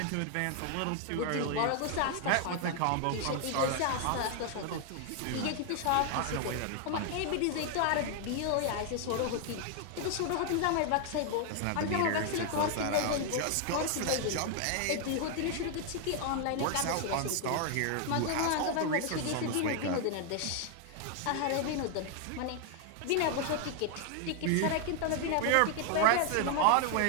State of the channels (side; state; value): both; different; correlation 0.00